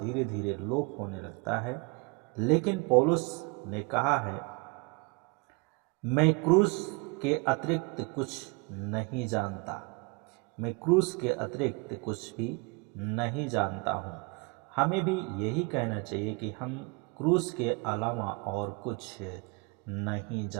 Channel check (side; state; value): left; quieter; 29.8 dB